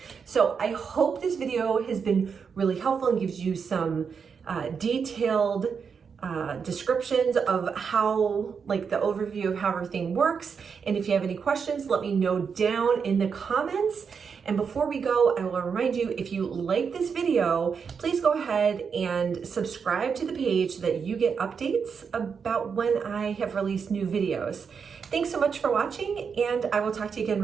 So I hope this video has been really helpful and gives you some detailed descriptions of how, like the overview of how everything works. And if you have any questions, let me know down in the comments. And before we go, I will remind you, if you like this video, please go ahead and subscribe to the page so that you get updates about when I have released new videos. Thanks so much for watching, and I will talk to you again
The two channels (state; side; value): quieter; left; 6.2 dB